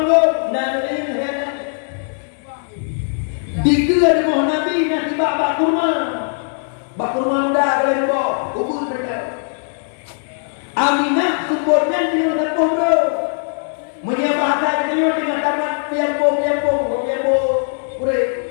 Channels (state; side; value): silent; right; digital silence